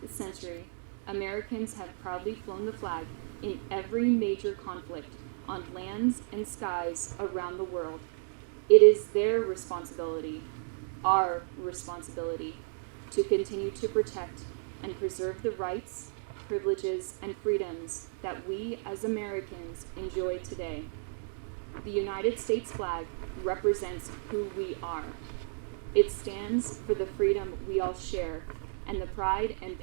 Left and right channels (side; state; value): left; silent; digital silence